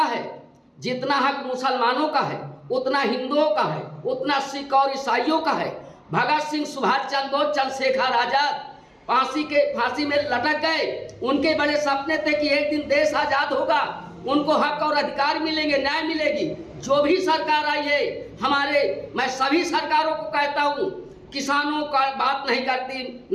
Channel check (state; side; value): identical; both; correlation 1.00